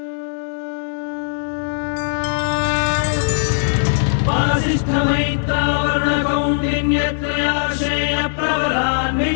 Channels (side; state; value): right; silent; 66 dB below the other